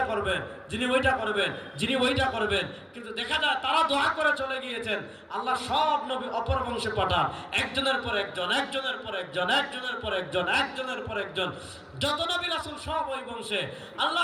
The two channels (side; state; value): both; identical; correlation 1.00